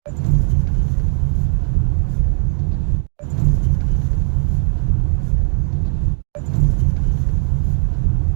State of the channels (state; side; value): silent; left; 58 dB below the other